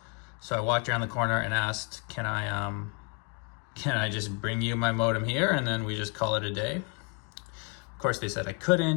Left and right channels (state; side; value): quieter; right; 32.9 dB